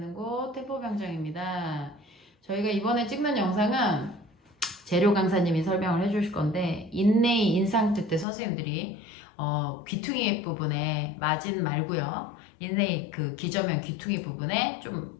곳 템포병장입니다. 저희가 이번에 찍는 영상은 재료 강사님이 설명을 해주실 건데 인레이 인상뜻 때 선생님들이 귀퉁이 부분에 마진 말고요. 인레이 그 기저면 귀퉁이 부분에 좀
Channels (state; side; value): drops out; right; at 8.2 s